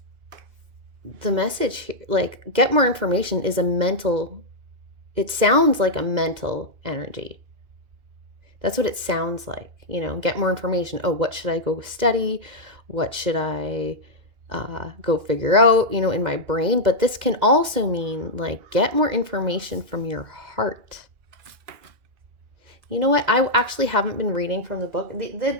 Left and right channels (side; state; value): left; late; 2.1 ms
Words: the message here, like get more information, is it sounds like a mental energy. That's what it sounds like, get more information. Oh, what should I go study? What should I go figure out, in my brain. But this can also mean like get more information from your heart. You know what? I actually haven't been reading from the book. The